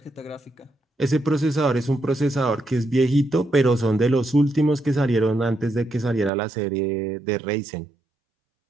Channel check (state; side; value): drops out; left; at 6.3 s